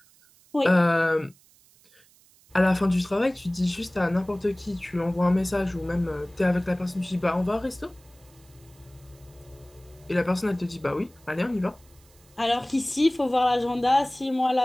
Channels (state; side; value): noise; right; hiss, 29 dB below the sound